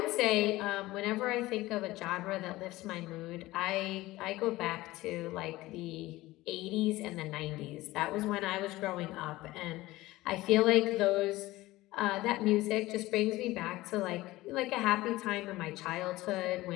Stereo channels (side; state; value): right; quieter; 18.2 dB